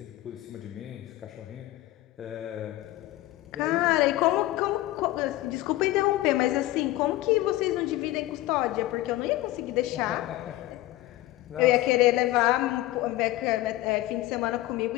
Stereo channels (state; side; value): quieter; right; 16.7 dB